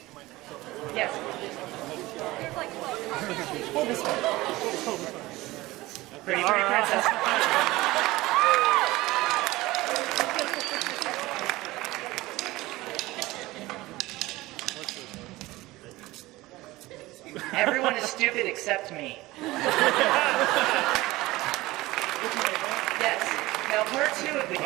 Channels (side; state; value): left; quieter; 19.2 dB